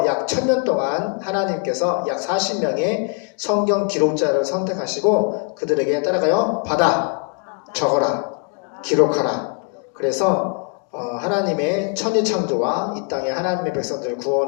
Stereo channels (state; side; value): quieter; right; 36.0 dB